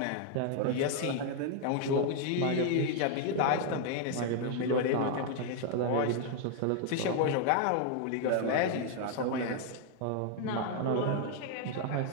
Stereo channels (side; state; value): both; different; correlation 0.00